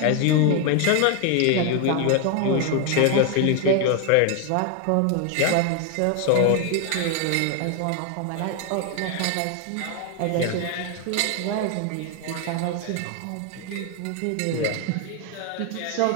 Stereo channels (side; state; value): both; different; correlation 0.01